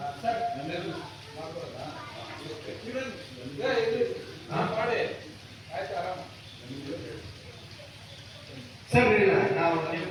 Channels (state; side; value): identical; both; correlation 1.00